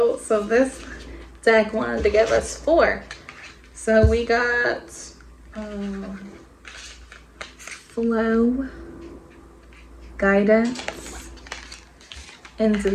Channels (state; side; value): identical; both; correlation 1.00